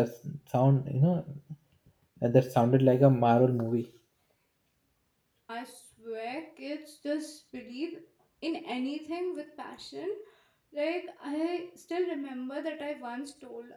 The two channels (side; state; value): both; identical; correlation 1.00